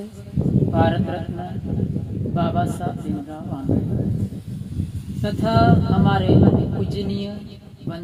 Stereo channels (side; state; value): both; identical; correlation 1.00